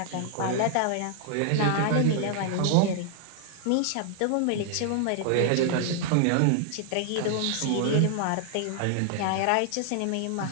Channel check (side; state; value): both; different; correlation 0.00